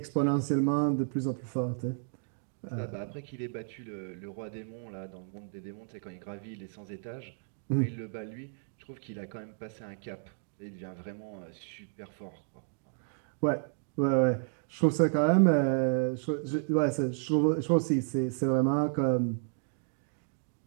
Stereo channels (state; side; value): silent; left; digital silence